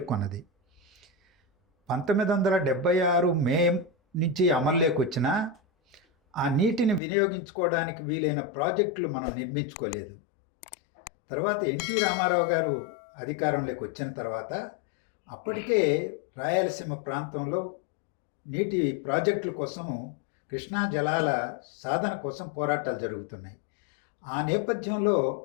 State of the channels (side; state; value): right; drops out; at 7.0 s